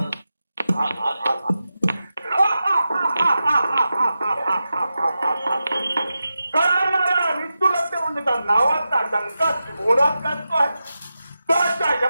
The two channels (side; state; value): both; inverted; correlation -0.91